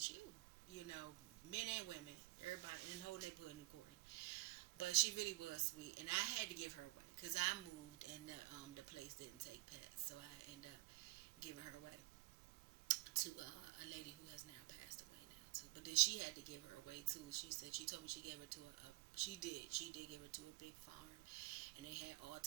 you?" Men and women, everybody in the whole neighborhood knew Courtney. But she really was sweet, and I had to give her away because I moved and the place didn't take pets, so I ended up giving her away to a lady who has now passed away now too. But then she had to give her away too. She told me she gave her to she did give her to a big farm, and they had all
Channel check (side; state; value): left; quieter; 22.6 dB